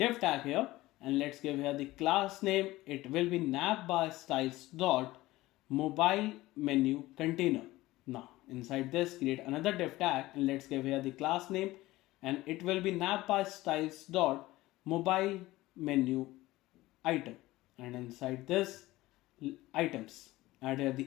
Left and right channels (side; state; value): right; quieter; 18.0 dB